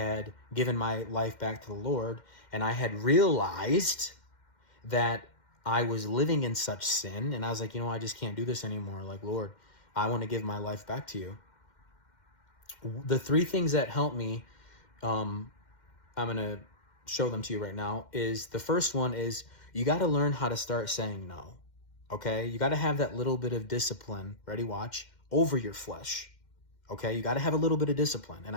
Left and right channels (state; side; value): late; right; 2.1 ms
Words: given my life back to the Lord, and I had realized that I was living in such sin, and I was like, I just can't do this anymore. Like, Lord, I want to give my life back to you. The three things that helped me, I'm going to show them to you right now, is the first one is you got to learn how to start saying no. Okay? You got to have that little bit of discipline, ready, watch, over your flesh. Okay? You got to have a little bit of discipline. And